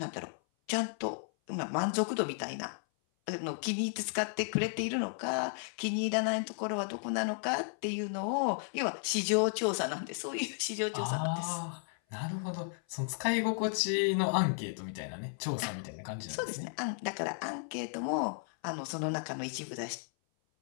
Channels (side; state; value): right; silent; 55 dB below the other